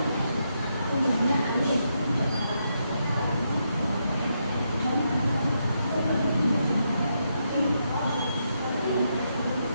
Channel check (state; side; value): inverted; both; correlation -0.81